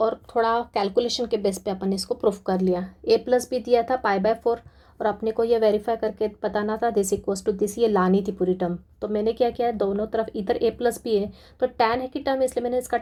थोड़ा कैलकुलेशन के बेस पे अपन ने इसको प्रूफ कर लिया। a प्लस बी दिया था π/4 और अपने को ये वेरीफाई करके बताना था दिस इक्वल्स टू दिस, ये लानी थी पूरी टर्म। तो मैंने क्या किया, दोनों तरफ इधर a प्लस बी है तो tan है की टर्म, इसलिए मैंने इसका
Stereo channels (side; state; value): both; identical; correlation 1.00